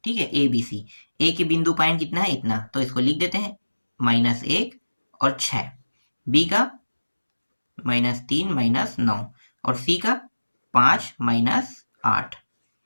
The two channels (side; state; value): both; inverted; correlation -1.00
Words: ठीक है, ए बी सी। ए के बिंदु पॉइंट कितना है, इतना, तो इसको लिख देते हैं -1 और 6, बी का -3 -9 और सी का 5 -8।